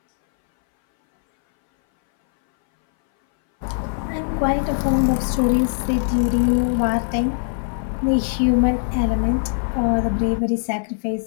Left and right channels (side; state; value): right; silent; 61 dB below the other